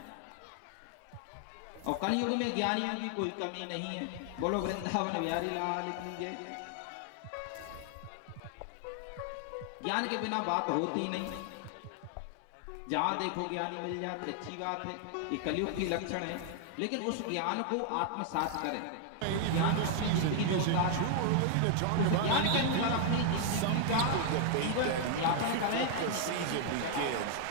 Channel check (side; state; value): both; different; correlation 0.00